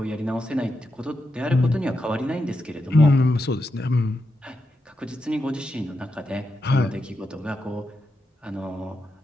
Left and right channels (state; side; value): normal; both; correlation 0.86